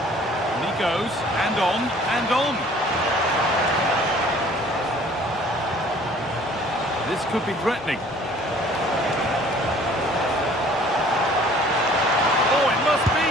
he goes, and on, and on. This could be threatening. Oh, it must be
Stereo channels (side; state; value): both; normal; correlation 0.53